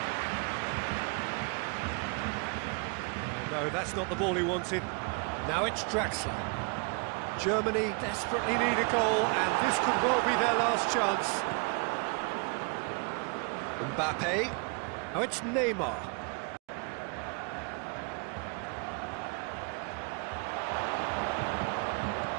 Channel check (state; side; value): quieter; left; 34.6 dB